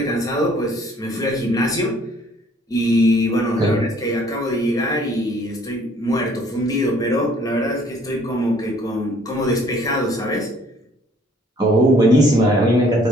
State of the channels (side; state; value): both; normal; correlation 0.59